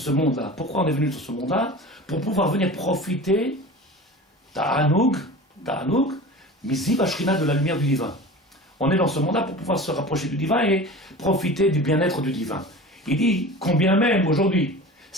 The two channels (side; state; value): both; normal; correlation 0.36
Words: monde-là? Pourquoi on est venu sur ce monde-là? Pour pouvoir venir profiter d'Anug, Miziv Ashrina, de la lumière du divin. On est dans ce monde-là pour pouvoir se rapprocher du divin et profiter du bien-être du divin. Il dit, combien même aujourd'hui,